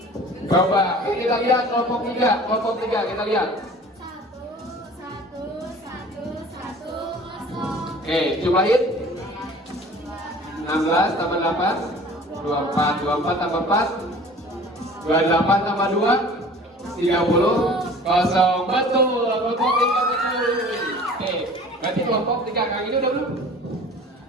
Bapak, ini kita lihat kelompok 3 kita lihat. 1 1 1 1 0. Oke, jumlahin. 16 tambah 8 24 tambah 4 28 tambah 2 30 kosong. Betul, kelompok 3 betul. Oke, berarti kelompok 3 kali ini udah belum?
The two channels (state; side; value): normal; both; correlation 0.45